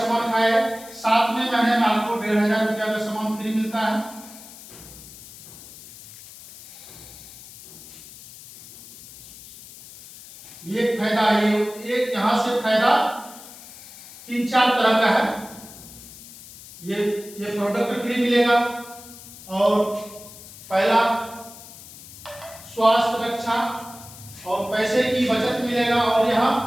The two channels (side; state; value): left; noise; hiss, 17 dB below the sound